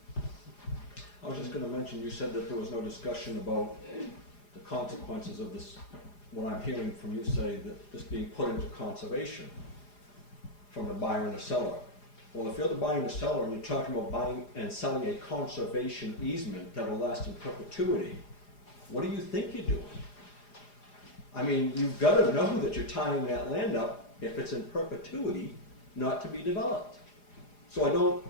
I was just going to mention, you said that there was no discussion about the consequences of this, what I'm hearing from you say, that this being put into conservation from the buyer and the seller. Well, if you're the buyer and the seller and you're talking about buying and selling a conservation easement that will last in perpetuity, what do you think you're doing? I mean, you've got to know that you're tying that land up, if it's in perpetuity, not to be developed. So I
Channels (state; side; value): late; right; 4.9 ms